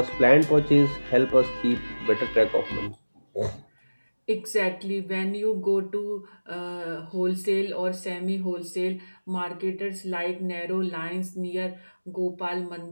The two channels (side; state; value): both; inverted; correlation -1.00